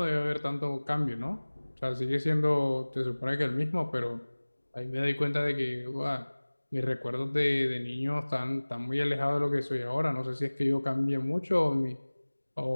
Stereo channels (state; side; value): inverted; both; correlation -1.00